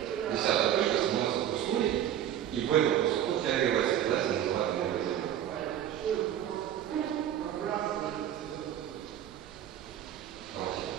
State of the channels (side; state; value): left; quieter; 10.8 dB